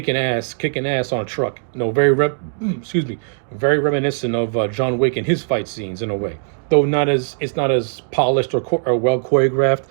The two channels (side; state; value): left; silent; digital silence